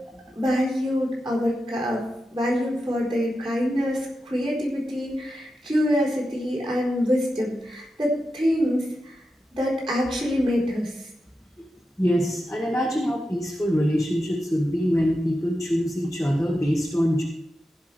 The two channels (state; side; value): normal; both; correlation 0.89